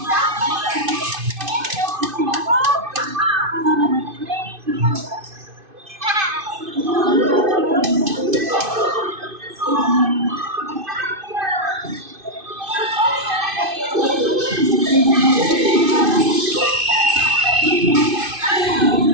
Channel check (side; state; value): left; late; 2.5 ms